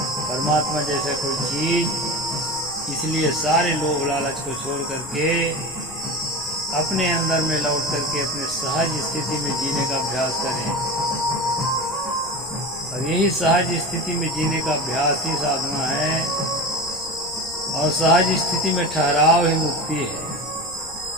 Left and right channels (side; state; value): left; noise; rumble, 20 dB below the sound